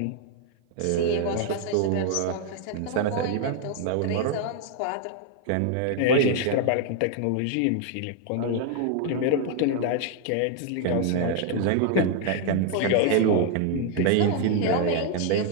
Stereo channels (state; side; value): different; both; correlation 0.00